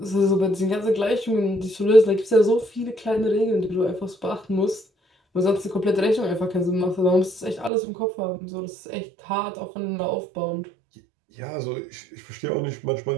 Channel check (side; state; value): left; drops out; at 7.7 s